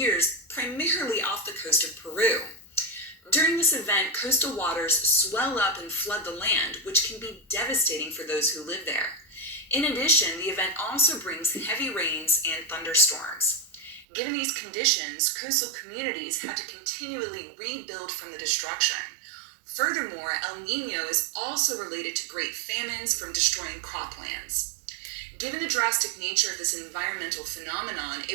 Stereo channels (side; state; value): left; drops out; at 14.1 s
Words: primarily off the coast of Peru. During this event, coastal waters swell up and flood the land, which can be devastating for those who live there. In addition, the event also brings heavy rains and thunderstorms. Given these conditions, coastal communities had to continually rebuild from the destruction. Furthermore, El Niño is also related to great famines from destroying croplands. Given the drastic nature of this environmental phenomenon,